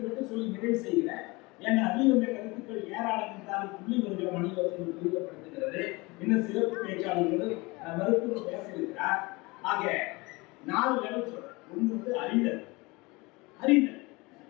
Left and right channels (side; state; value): right; quieter; 24.5 dB